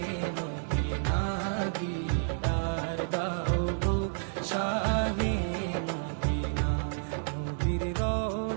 মদিনা, দিদার দাও গো শাহে মদিনা। নবীর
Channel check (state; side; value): silent; left; digital silence